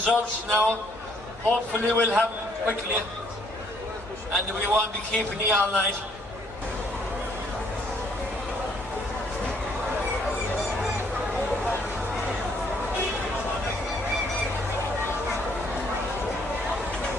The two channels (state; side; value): normal; both; correlation 0.66